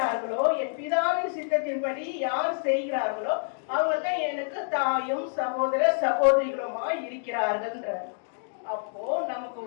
என் பிதாவின் சித்தத்தின்படி யார் செய்கிறார்களோ அவங்க தான் எனக்கு தாயும் சகோதர சகோதரிகளுமா இருக்கிறார்கள். அப்போ நமக்கு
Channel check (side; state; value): right; silent; digital silence